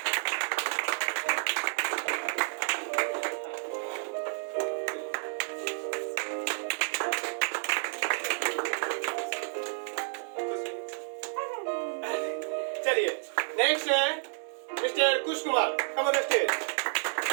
चलिए नेक्स्ट है mister Kush Kumar, come on the stage.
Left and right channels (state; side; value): silent; left; digital silence